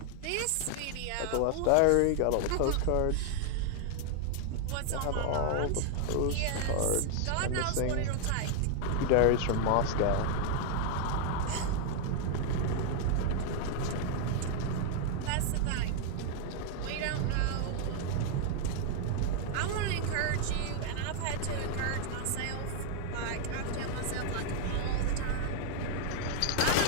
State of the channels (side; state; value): both; different; correlation 0.00